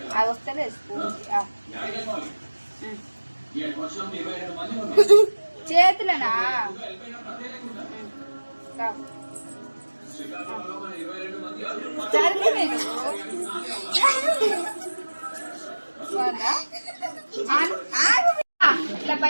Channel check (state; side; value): inverted; both; correlation -1.00